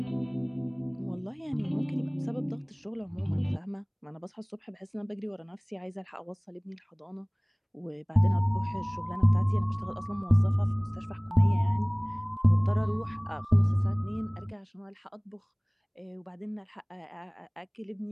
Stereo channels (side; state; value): both; identical; correlation 1.00